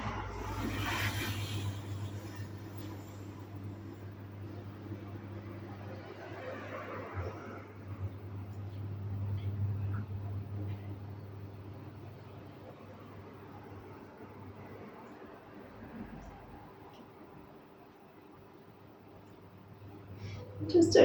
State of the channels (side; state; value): both; identical; correlation 1.00